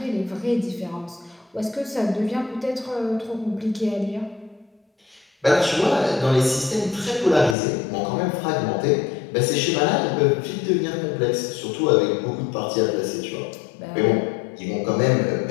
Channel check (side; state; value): right; drops out; at 7.6 s